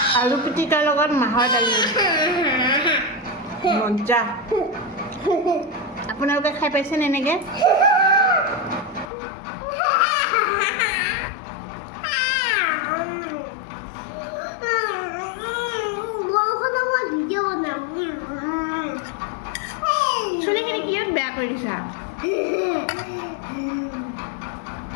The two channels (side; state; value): right; drops out; at 9.1 s